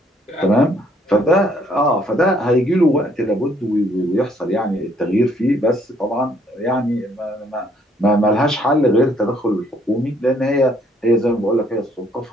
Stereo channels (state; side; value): normal; both; correlation 0.65